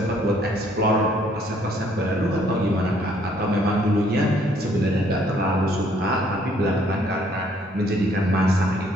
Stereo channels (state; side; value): normal; both; correlation 0.64